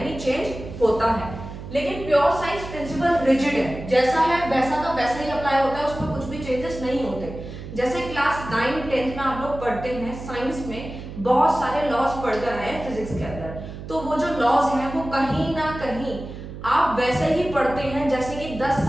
चेंज होता है। लेकिन प्योर साइंस प्रिंसिपल रिजिड है, जैसा है वैसा का वैसा ही अप्लाई होता है, उसमें कुछ भी चेंजेस नहीं होते। जैसे क्लास 9 10th में आप लोग पढ़ते हैं साइंस में, बहुत सारे लॉज पढ़कर आए फिजिक्स के अंदर, तो वो जो लॉज हैं वो कहीं ना कहीं आप वैसे ही पढ़ते हैं जैसे कि 10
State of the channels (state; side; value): noise; right; hum, 11 dB below the sound